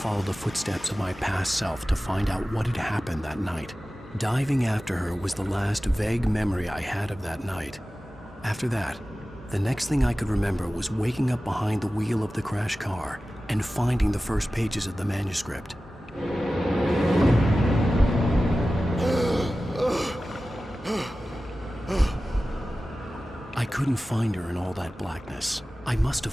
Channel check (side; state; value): both; normal; correlation 0.95